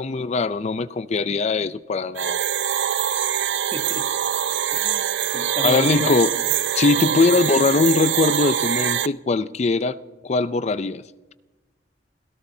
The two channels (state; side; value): normal; both; correlation 0.23